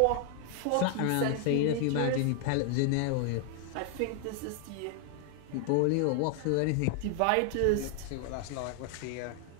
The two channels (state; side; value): different; both; correlation 0.00